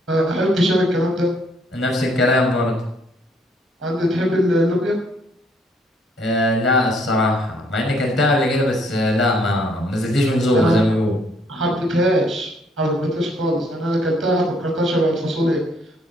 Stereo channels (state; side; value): normal; both; correlation 0.66